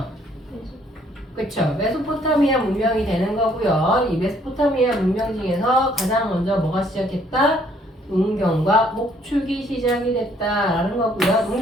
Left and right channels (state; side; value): normal; both; correlation 0.64